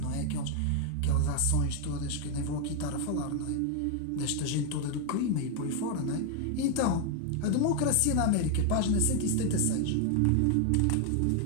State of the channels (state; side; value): different; both; correlation 0.01